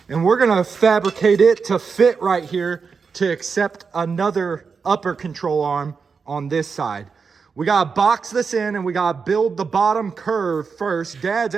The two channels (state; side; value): quieter; left; 5.4 dB